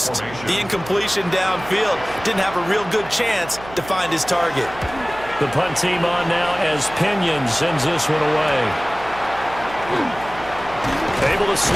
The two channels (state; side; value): noise; right; hum, 16 dB below the sound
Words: the incompletion downfield. Didn't have a real good chance to find his target. The punt team on now as Pinion sends this one away. Able to